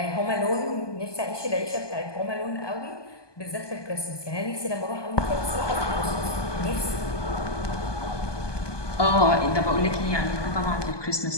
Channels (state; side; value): late; right; 1.2 ms